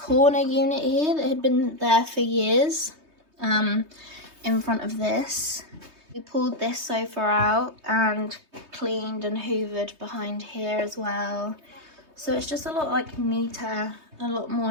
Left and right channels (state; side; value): late; left; 3.2 ms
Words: unit here that had been there for years. In front of this. We pulled this sofa out and cleaned and hoovered behind here as well. So it's just a lot neater, a lot more